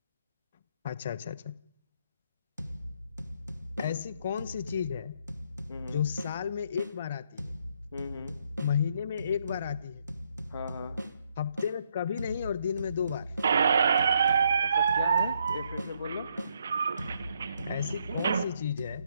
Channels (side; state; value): both; inverted; correlation -0.74